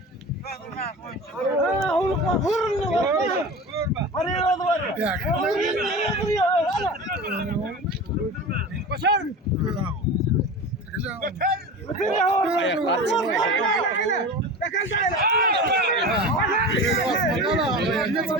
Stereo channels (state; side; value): normal; both; correlation 0.31